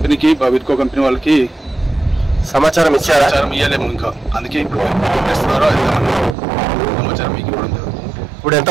వీర్కో కంపెనీ వాళ్ళకి సమాచారం ఇచ్చారా? సమాచారం ఇవ్వలేము ఇంకా, అందుకే ఇప్పుడు చేస్తున్నారో సమాచారం మీకు ఇవ్వడం జరుగుతుంది. ఇప్పుడు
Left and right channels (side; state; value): left; drops out; at 6.4 s